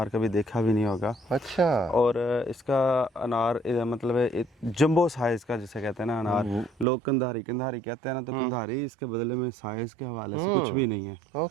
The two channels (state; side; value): drops out; left; at 6.9 s